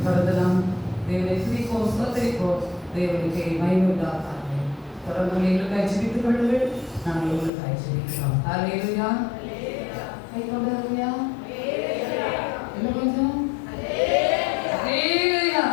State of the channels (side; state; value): right; drops out; at 7.5 s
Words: தொடர்ந்து நாம் தேவனை துதிப்போம், ஸ்தோத்திரிப்போம். தேவனுக்கு மகிமையுண்டாக தொடர்ந்து எங்களுக்காய் ஜெபித்துக் கொள்ளுங்கள். நாங்கள் உங்களுக்காய் ஜெபிக்கிறோம். அல்லேலூயா. கை கொண்டாருயா. என்ன கொஞ்சம் அல்லேலூயா.